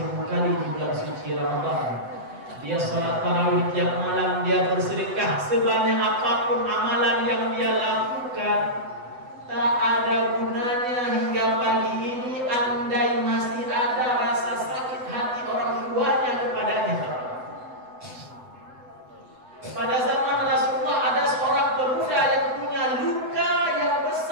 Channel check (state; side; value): late; left; 8.0 ms